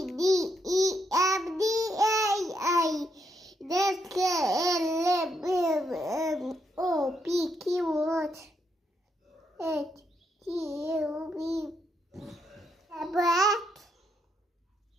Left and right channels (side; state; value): both; normal; correlation 0.78